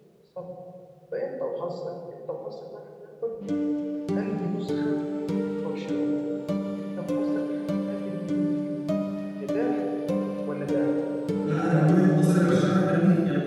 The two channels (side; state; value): both; identical; correlation 1.00